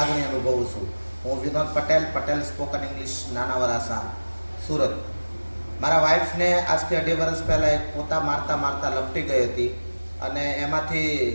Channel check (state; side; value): inverted; both; correlation -1.00